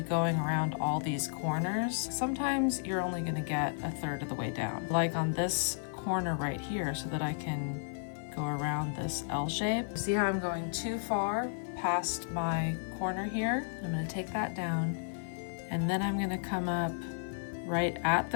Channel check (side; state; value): right; silent; digital silence